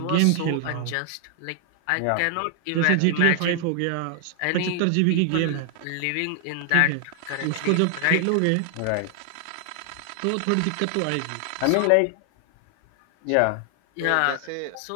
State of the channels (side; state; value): both; different; correlation 0.00